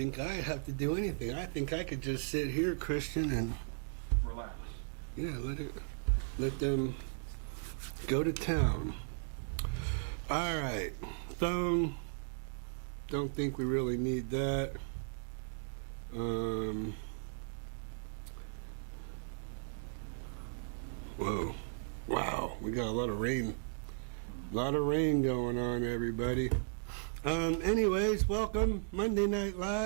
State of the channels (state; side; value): silent; left; digital silence